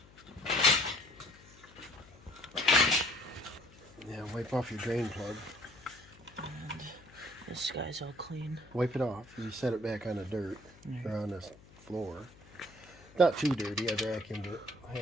Yeah, wipe off your drain plug. And this guy's all clean. Wipe it off. You set it back on the dirt or on the floor. Not too dirty. I vacuumed it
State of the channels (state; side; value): noise; left; hum, 23 dB below the sound